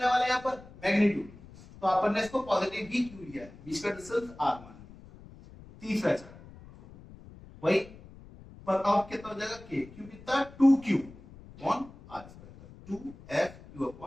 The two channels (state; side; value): noise; left; rumble, 20 dB below the sound